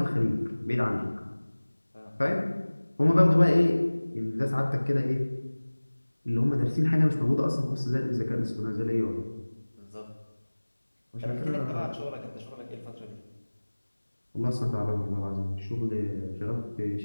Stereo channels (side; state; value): both; inverted; correlation -1.00